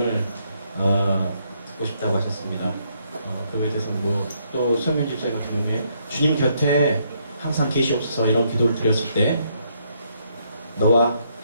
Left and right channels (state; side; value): inverted; both; correlation -0.73